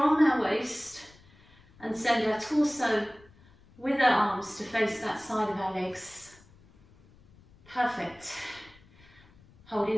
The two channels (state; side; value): noise; left; rumble, 27 dB below the sound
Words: our waist and send our torso with our arms to face that side of our legs. Perfect.